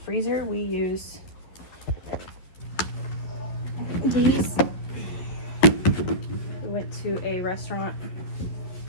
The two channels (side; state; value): right; late; 11 ms